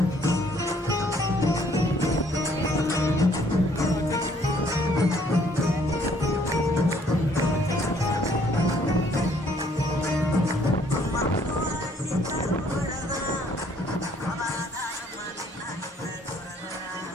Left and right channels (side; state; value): both; normal; correlation 0.63